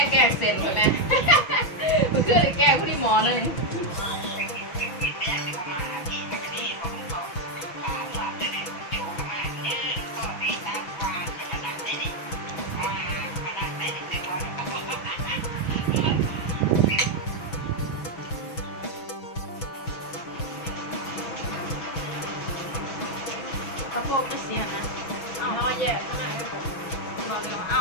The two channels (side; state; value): right; late; 6.1 ms